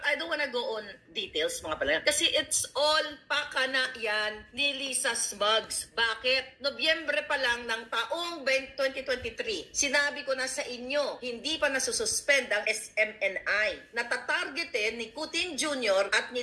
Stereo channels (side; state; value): both; identical; correlation 1.00